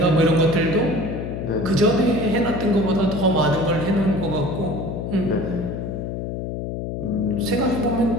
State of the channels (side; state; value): left; noise; hum, 5 dB below the sound